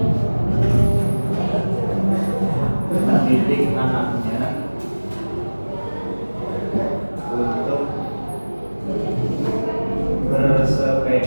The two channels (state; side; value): inverted; both; correlation -1.00